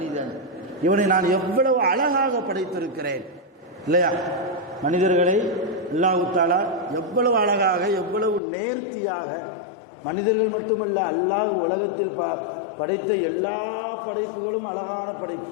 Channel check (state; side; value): drops out; right; at 8.4 s